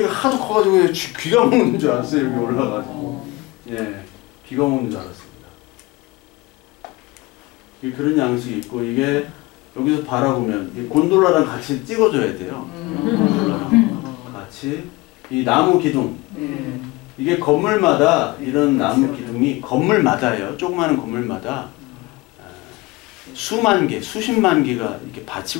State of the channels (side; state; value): right; quieter; 22.2 dB